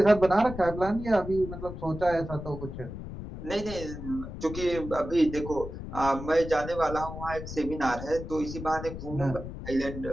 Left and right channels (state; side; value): noise; left; rumble, 9 dB below the sound